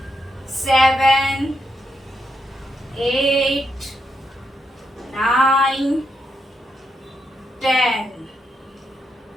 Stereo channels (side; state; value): both; normal; correlation 0.81